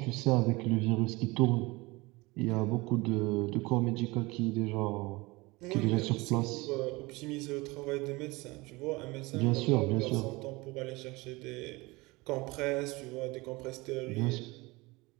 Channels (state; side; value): quieter; left; 23.2 dB